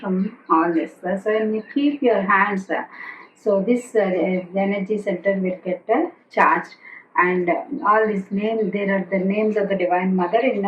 all this. So when you keep your hands, so this energy center will get charged. And all these names, there are the names of the Divine Mother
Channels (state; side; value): identical; both; correlation 1.00